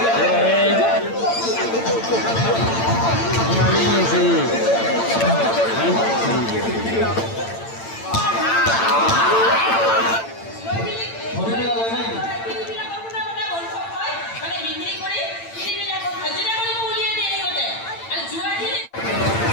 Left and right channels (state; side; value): late; right; 8.9 ms